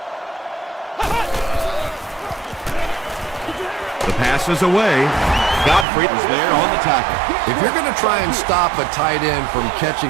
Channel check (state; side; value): drops out; left; at 5.9 s